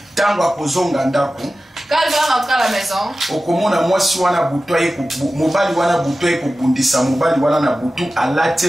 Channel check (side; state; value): both; normal; correlation 0.95